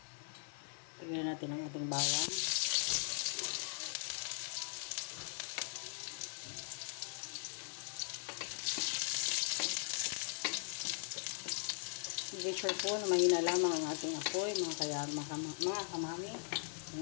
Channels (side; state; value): right; silent; 51 dB below the other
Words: Lagyan natin ang ating bawang. Make sure po na mahina lamang ang ating apoy, mga kamami.